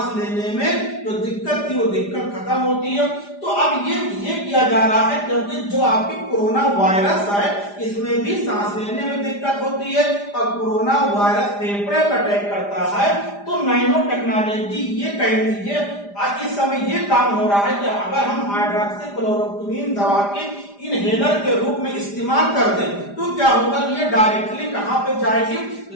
लेने में जो दिक्कत थी वो दिक्कत खत्म होती है। तो अब ये किया जा रहा है क्योंकि जो आपकी कोरोना वायरस है इसमें भी सांस लेने में दिक्कत होती है और कोरोना वायरस फेफड़े पर अटैक करता है। तो नैनो टेक्नोलॉजी ये कह लीजिए आज इस समय ये काम हो रहा है कि अगर हम हाइड्रोक्सीक्लोरोक्विन दवा के इनहेलर के रूप में इस्तेमाल कर दें तो क्या होगा, ये डायरेक्टली कहां पे जाएगी,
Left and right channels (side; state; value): right; late; 5.0 ms